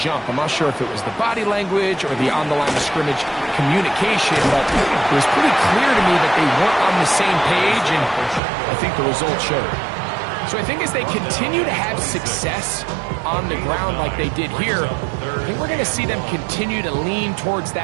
I'm not sure if it was the body language or the on-the-line of scrimmage communication, but it was pretty clear to me that they weren't on the same page, and I think the result showed. So I think as they continue to have success on the ground like they did here, I think we're going to see them continue to lean towards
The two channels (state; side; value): drops out; left; at 8.4 s